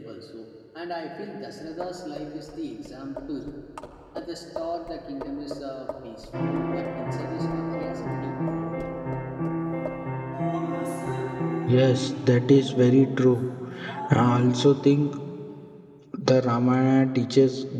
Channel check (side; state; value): both; identical; correlation 1.00